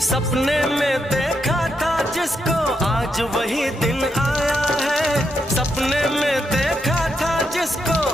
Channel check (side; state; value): both; normal; correlation 0.81